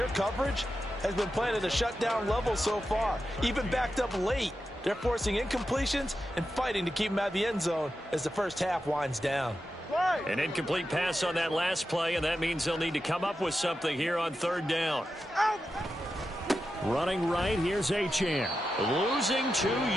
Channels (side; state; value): both; normal; correlation 0.90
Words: coverage has been playing at a shutdown level so far. Even backed up late, they're forcing incompletions and fighting to keep them out of the end zone as the first half winds down. An incomplete pass on that last play, and that means they'll need to come up with something here on third down. Running right, here's Achane. Losing 2